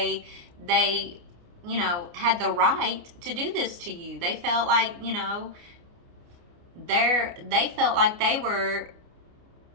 had the right to do this to you. They felt like, they felt like they were,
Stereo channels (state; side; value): late; left; 29 ms